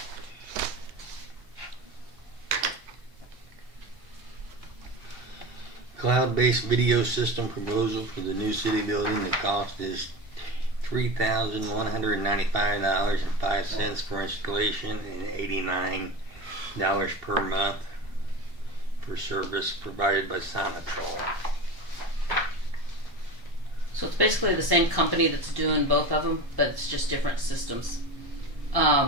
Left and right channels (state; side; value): late; left; 1.1 ms